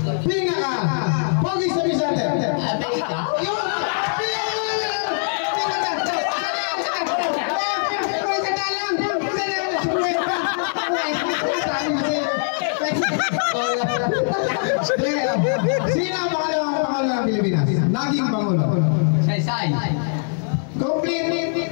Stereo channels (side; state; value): right; silent; 62 dB below the other